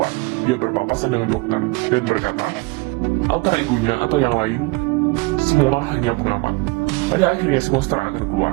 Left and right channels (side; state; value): left; quieter; 25.2 dB